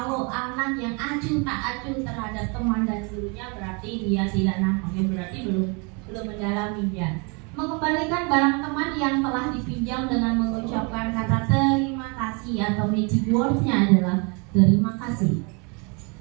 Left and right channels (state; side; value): quieter; left; 32.6 dB